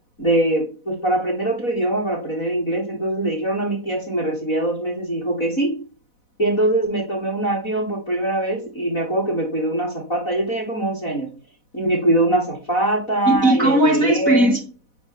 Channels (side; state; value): right; late; 4.1 ms